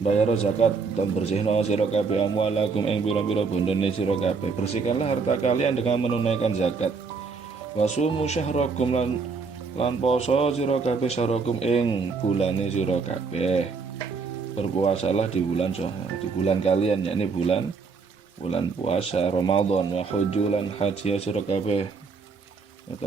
bayar zakat dan bersihna sira kabeh amwalakum ing pira-pira bondone sira kabeh. Bersihkanlah harta kalian dengan menunaikan zakat. Wa sumu syahrakum lan poso sira kabeh syahrakum ing bulane sira kabeh. Berpuasalah di bulan kalian, yakni bulan puasa Ramadan. Wa hujjulan haji sira kabeh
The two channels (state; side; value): quieter; left; 4.8 dB